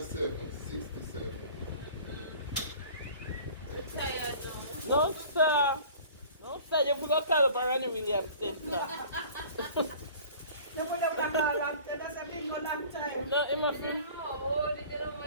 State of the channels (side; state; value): both; inverted; correlation -0.46